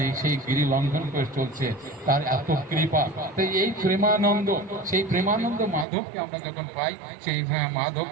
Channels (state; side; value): drops out; left; at 5.9 s